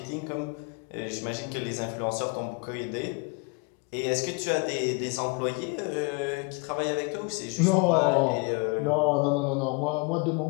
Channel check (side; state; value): right; quieter; 29.7 dB